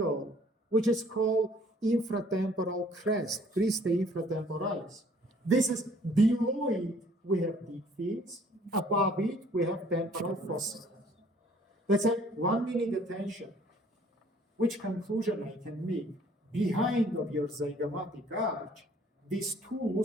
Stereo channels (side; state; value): both; normal; correlation 0.58